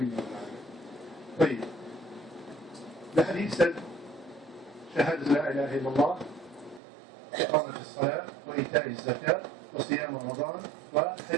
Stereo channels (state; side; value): drops out; left; at 6.8 s